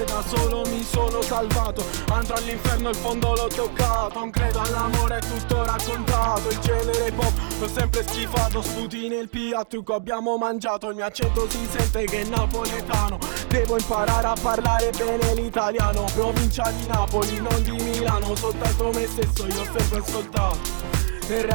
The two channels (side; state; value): left; silent; 63 dB below the other